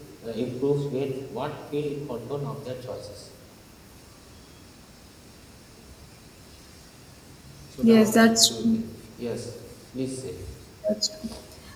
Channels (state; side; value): identical; both; correlation 1.00